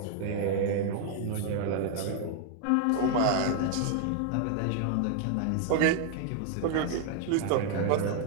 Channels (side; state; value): both; different; correlation 0.00